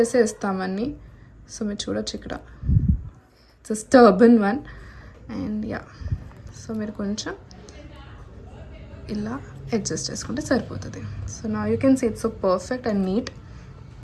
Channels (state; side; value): identical; both; correlation 1.00